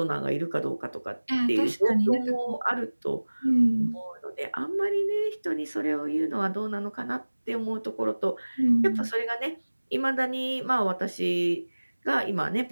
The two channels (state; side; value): inverted; both; correlation -1.00